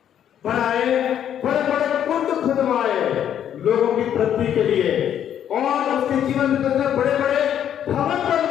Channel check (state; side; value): quieter; right; 9.8 dB